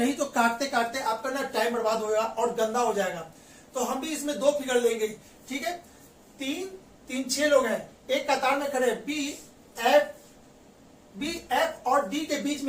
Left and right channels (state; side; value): identical; both; correlation 1.00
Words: तो काटते काटते आपका ना टाइम बर्बाद होगा और गंदा हो जाएगा। तो हम भी इसमें 2 फिगर लेंगे। ठीक है, 3 6 लोग हैं, एक कतार में खड़े, बी एफ और डी के बीच